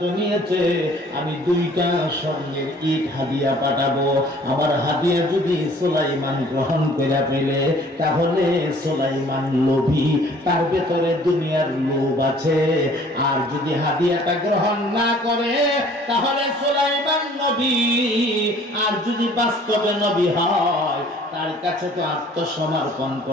নিয়েছে, আমি 2টা স্বর্ণের ইট হাদিয়া পাঠাবো। আমার হাদিয়া যদি সুলাইমান গ্রহণ করে ফেলে, তাহলে সুলাইমান লোভী, তার ভেতরে দুনিয়ার লোভ আছে। আর যদি হাদিয়াটা গ্রহণ না করে, তাহলে সুলাইমান নবী, আর যদি বাস্তবে নবী হয়, তার কাছে তো আত্মসমর্পণ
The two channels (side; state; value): both; normal; correlation 0.54